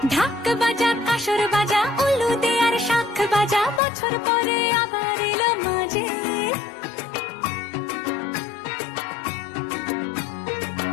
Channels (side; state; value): right; drops out; at 3.8 s